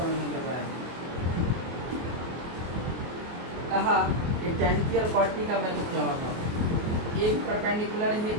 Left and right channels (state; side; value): late; left; 24 ms